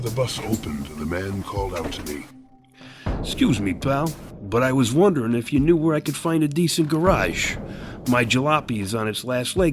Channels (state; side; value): identical; both; correlation 1.00